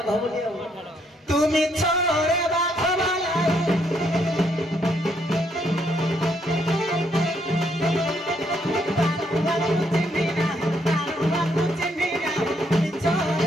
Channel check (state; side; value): normal; both; correlation 0.72